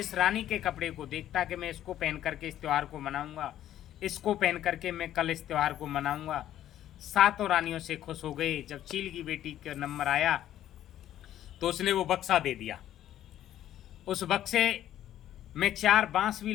रानी के कपड़े को देखता कि मैं इसको पहन करके इस त्यौहार को मनाऊंगा, इसको पहन करके मैं कल इस त्यौहार को मनाऊंगा, सातों रानियों से खुश हो गए। जब चील की बेटी का नंबर आया तो उसने वो बक्सा दे दिया। उस बक्से में 4 बांस भी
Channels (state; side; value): quieter; right; 12.0 dB